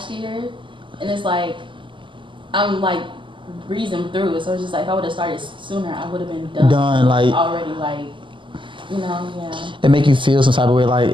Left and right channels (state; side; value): late; left; 0.24 ms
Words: year, and it's like, I'm like breezing through it. So it's just like, if I would have started sooner, I would have been done like already, like, yeah. It make you feel some type of way, like